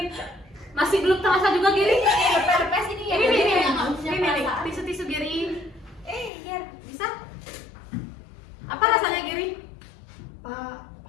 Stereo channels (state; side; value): drops out; right; at 6.3 s